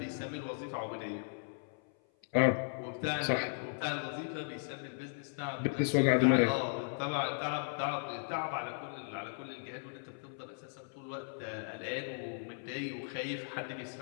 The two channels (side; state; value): right; silent; 53 dB below the other